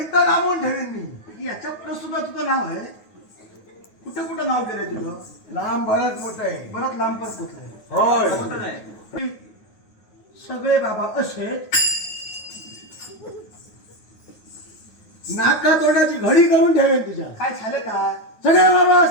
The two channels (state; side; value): late; right; 9.4 ms